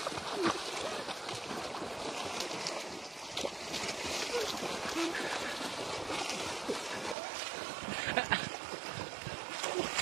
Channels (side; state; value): left; drops out; at 7.2 s